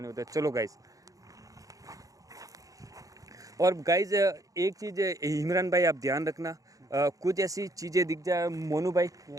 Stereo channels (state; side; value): late; left; 0.17 ms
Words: नहीं होता है। चलो गाइज। और गाइज एक चीज़ इमरान भाई आप ध्यान रखना, कुछ ऐसी चीज़ें दिख जाए मोनू भाई